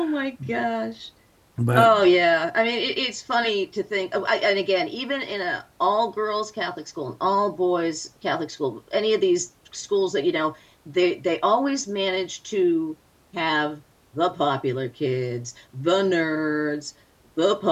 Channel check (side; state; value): both; identical; correlation 1.00